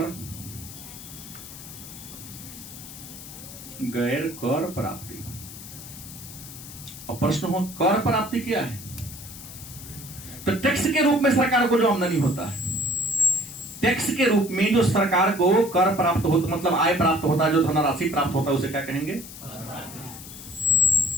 गैर कर प्राप्ति। और प्रश्न हो कर प्राप्ति क्या है? तो टैक्स के रूप में सरकार को जो आमदनी होता है, टैक्स के रूप में जो सरकार को कर प्राप्त होता, मतलब आय प्राप्त होता है, जो धनराशि प्राप्त होता है, उसे क्या कहेंगे?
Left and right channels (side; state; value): left; noise; hiss, 14 dB below the sound